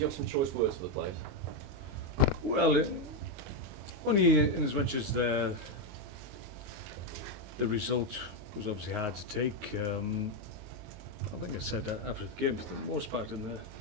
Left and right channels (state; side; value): late; left; 22 ms